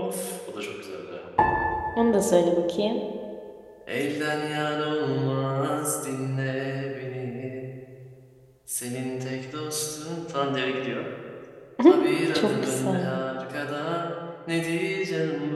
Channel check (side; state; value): both; identical; correlation 1.00